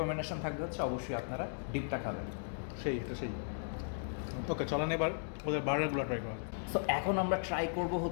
থাকবে হচ্ছে অবশ্যই আপনারা ডিপটা খাবেন। সেই ওকে, চলেন এবার ওদের বার্গারগুলো ট্রাই করা যায়। সো এখন আমরা ট্রাই করব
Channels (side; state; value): right; silent; digital silence